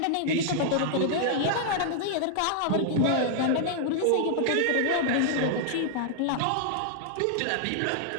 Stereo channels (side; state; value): both; different; correlation -0.01